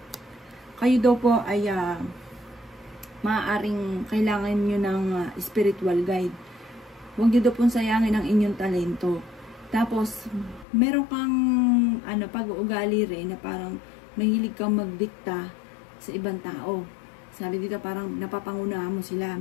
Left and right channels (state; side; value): drops out; right; at 10.7 s